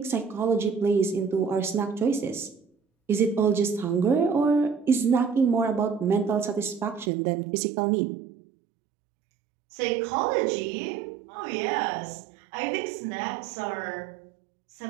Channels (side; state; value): left; drops out; at 7.1 s